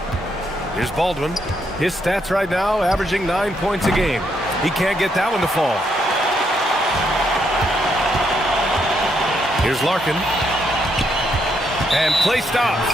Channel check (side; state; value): both; normal; correlation 0.76